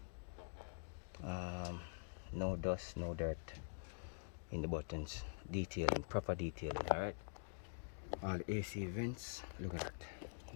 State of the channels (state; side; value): silent; right; digital silence